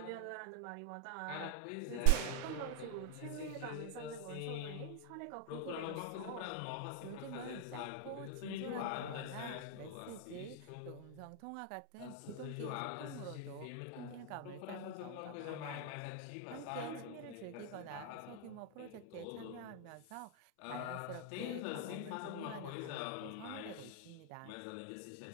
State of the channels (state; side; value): different; both; correlation 0.00